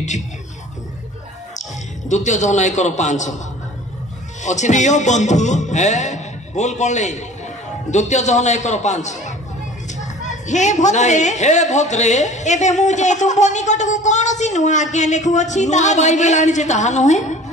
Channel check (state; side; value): normal; both; correlation 0.45